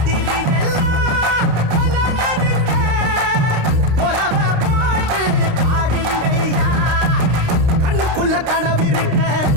எல்லாம் கொல்லனதுங்க கொலவ போட்டு பாடுங்கய்யா கண்ணுக்குள்ள கனவிருக்க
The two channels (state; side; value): late; left; 29 ms